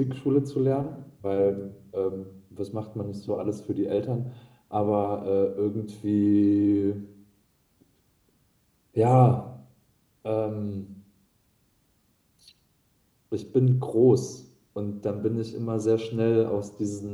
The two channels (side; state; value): both; identical; correlation 1.00